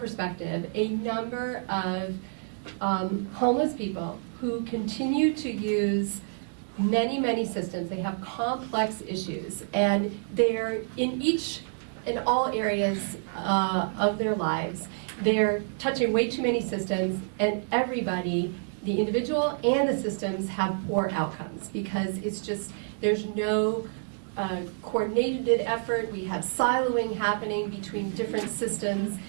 a number of homeless people who continue to use many systems. They have complex issues, and they're in all areas of their lives. They're touching way too many systems, and everybody, the individual and the systems, have poor outcomes because it's just, there's no coordinated effort. We have siloing happening between different systems,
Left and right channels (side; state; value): left; silent; digital silence